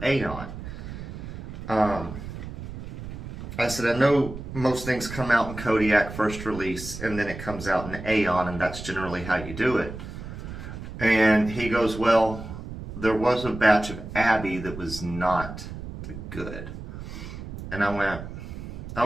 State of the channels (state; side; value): noise; right; rumble, 10 dB below the sound